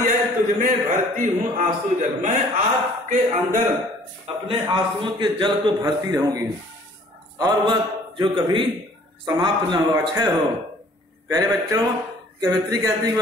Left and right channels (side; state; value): both; normal; correlation 0.55